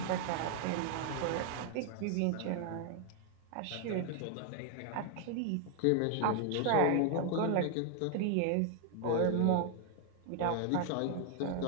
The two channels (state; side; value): different; both; correlation 0.00